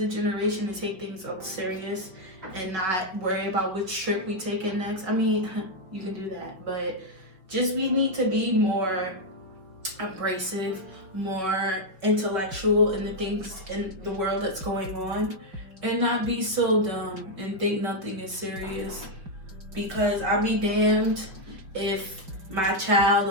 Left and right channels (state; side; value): late; left; 5.1 ms